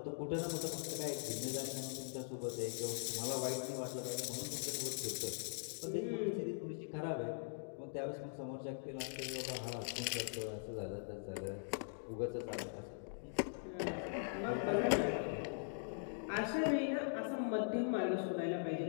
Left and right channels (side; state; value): right; silent; digital silence